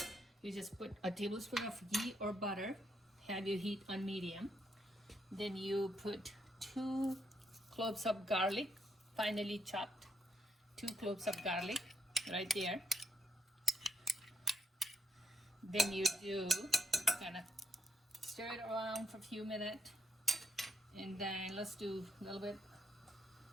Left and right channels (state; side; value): normal; both; correlation 0.76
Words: You just put a tablespoon of ghee or butter, have your heat on medium. Then you put 2 cloves of garlic, finely chopped, 2 cloves of garlic right there. Then you do kind of stir it around for a few minutes, and then let's do a little bit,